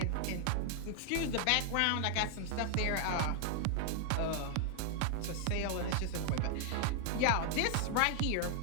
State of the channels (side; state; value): both; different; correlation 0.00